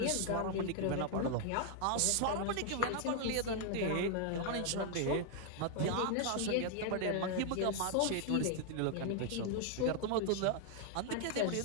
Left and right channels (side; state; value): both; different; correlation 0.00